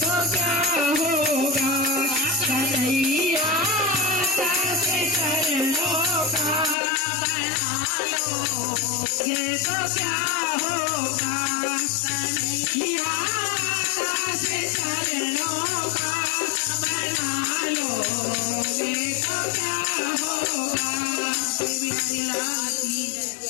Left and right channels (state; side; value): drops out; right; at 6.8 s